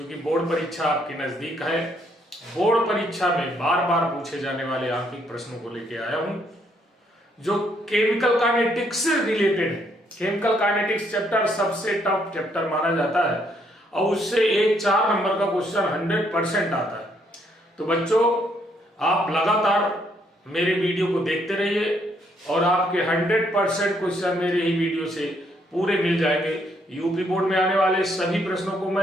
बोर्ड परीक्षा आपके नजदीक है। बोर्ड परीक्षा में बार बार पूछे जाने वाले आंतरिक प्रश्नों को लेके आया हूं, जो केमिकल काइनेटिक्स से रिलेटेड है। केमिकल काइनेटिक्स चैप्टर सबसे टफ चैप्टर माना जाता है और उससे एक 4 नंबर का क्वेश्चन 100% आता है। तो बच्चों, आप लगातार मेरे वीडियो को देखते रहिए और आपके 100% क्वेश्चन मेरे ही वीडियो से पूरे मिल जाएंगे। यूपी बोर्ड में आने वाले सभी प्रश्नों को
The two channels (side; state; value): both; normal; correlation 0.71